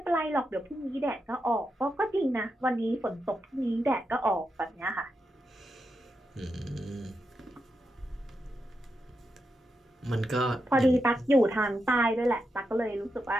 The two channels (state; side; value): normal; both; correlation 0.86